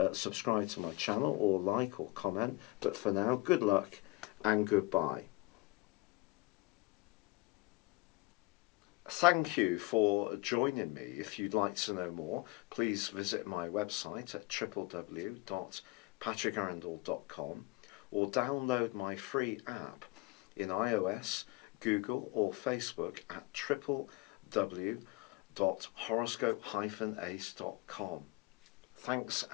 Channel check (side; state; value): right; quieter; 21.9 dB